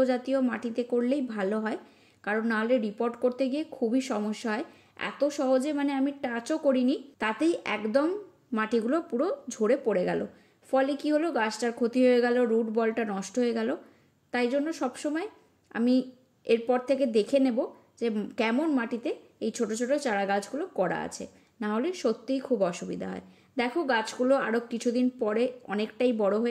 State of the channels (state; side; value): identical; both; correlation 1.00